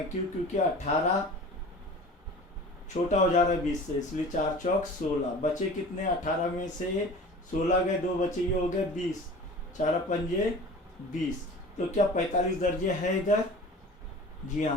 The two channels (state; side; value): normal; both; correlation 0.40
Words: क्यों, क्योंकि 18 छोटा हो जा रहा है 20 से, इसलिए 4 चौक 16, बचे कितने, 18 में से 16 गए, 2 बचे, ये हो गए 20, 4 पंजे 20, तो क्या 45 दर्जे है इधर, जी